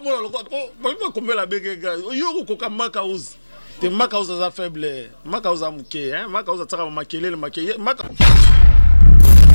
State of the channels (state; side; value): inverted; both; correlation -1.00